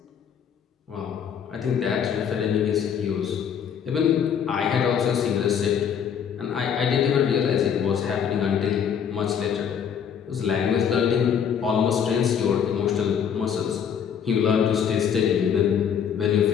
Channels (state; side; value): quieter; right; 7.9 dB